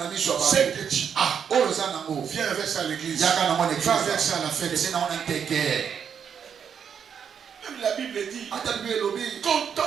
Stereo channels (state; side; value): quieter; left; 7.5 dB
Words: ce que tu as. Viens avec ça à l'église. Va avec ça à la fête. Même la Bible dit,